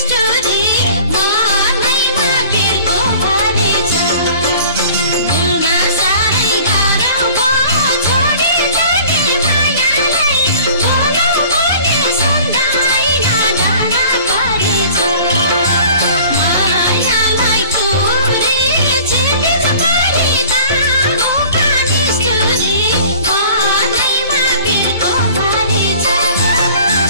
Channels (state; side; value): inverted; both; correlation -0.48